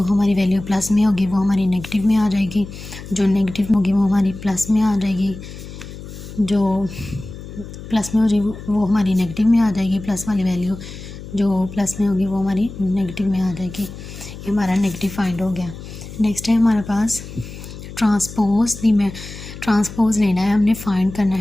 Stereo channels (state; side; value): noise; left; hum, 13 dB below the sound